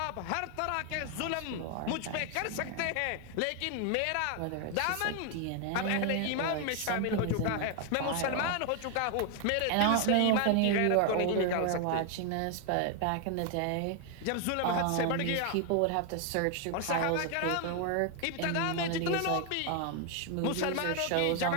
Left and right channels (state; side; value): different; both; correlation 0.01